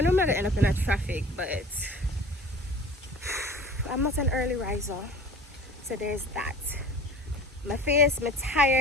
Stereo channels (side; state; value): both; normal; correlation 0.42